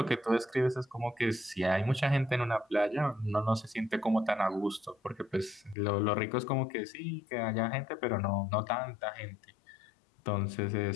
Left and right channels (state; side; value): drops out; right; at 5.8 s